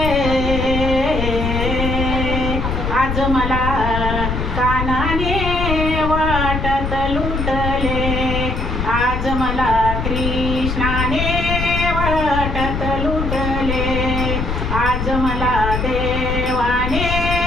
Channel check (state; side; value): noise; left; rumble, 2 dB below the sound